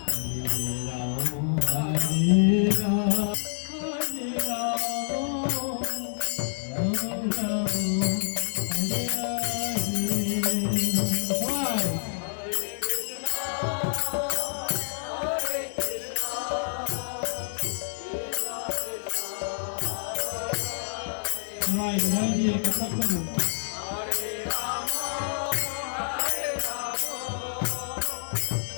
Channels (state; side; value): silent; right; digital silence